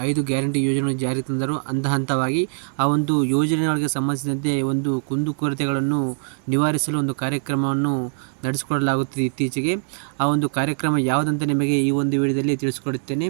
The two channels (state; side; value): silent; left; digital silence